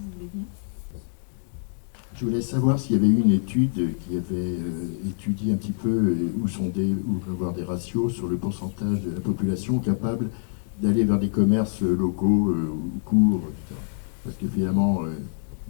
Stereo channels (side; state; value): right; silent; digital silence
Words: voulez bien. Je voulais savoir s'il y avait eu une étude qui avait étudié un petit peu ou avoir des ratios sur le pourcentage de la population capable d'aller vers des commerces locaux ou courts, etc. Parce que finalement,